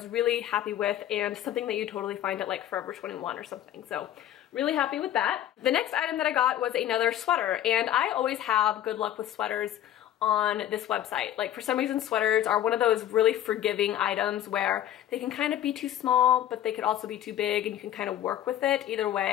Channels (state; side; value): quieter; right; 11.8 dB